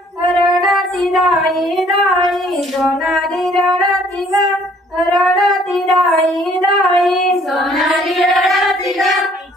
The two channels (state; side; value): normal; both; correlation 0.60